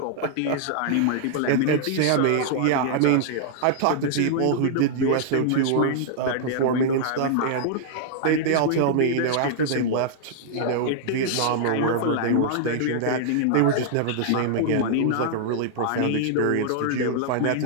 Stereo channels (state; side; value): different; both; correlation -0.01